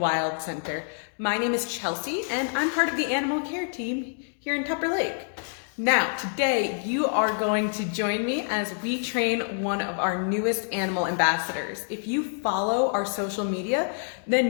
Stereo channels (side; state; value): right; silent; digital silence